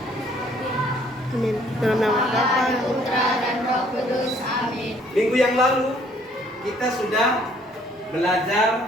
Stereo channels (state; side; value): normal; both; correlation 0.61